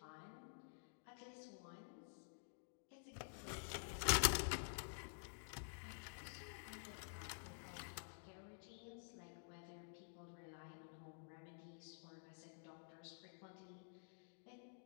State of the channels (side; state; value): right; silent; digital silence